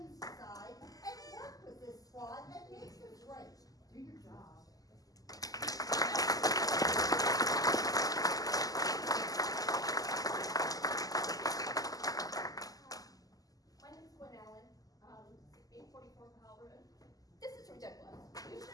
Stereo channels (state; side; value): late; right; 0.17 ms